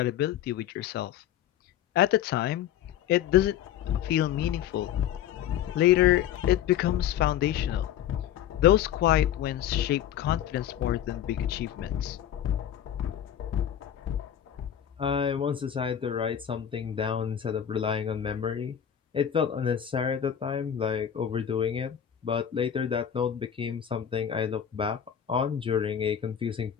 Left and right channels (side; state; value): right; quieter; 10.1 dB